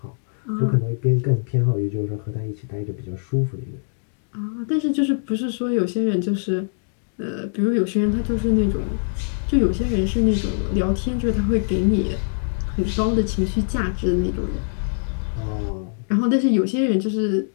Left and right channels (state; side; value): silent; right; digital silence